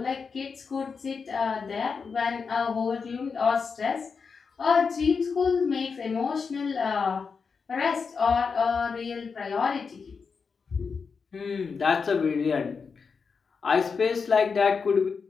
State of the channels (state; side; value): quieter; right; 5.4 dB